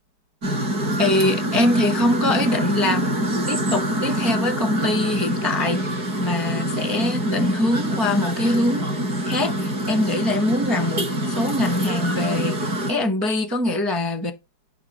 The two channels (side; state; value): left; late; 4.8 ms